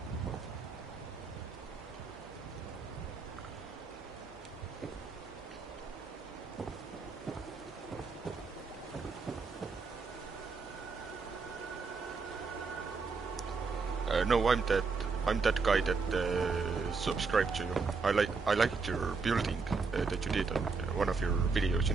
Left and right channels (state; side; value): quieter; left; 4.6 dB